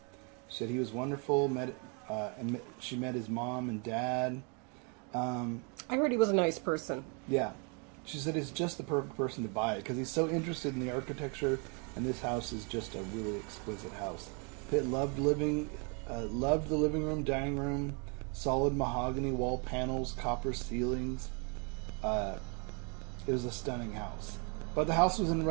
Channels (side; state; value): left; quieter; 35.5 dB